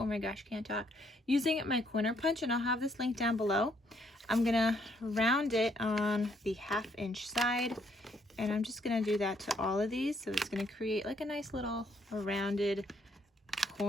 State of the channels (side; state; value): both; normal; correlation 0.70